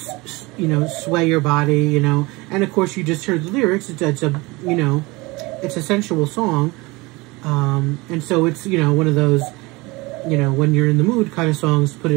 sway your body, And of course, you just heard the lyrics. It's a, it's a sensual song. And so it's, one of those, when you're in the mood kind of songs, put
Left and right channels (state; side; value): quieter; left; 23.6 dB